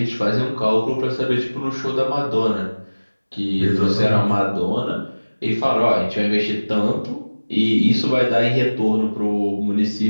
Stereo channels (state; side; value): inverted; both; correlation -1.00